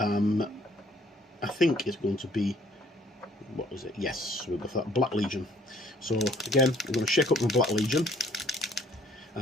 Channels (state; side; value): normal; both; correlation 0.60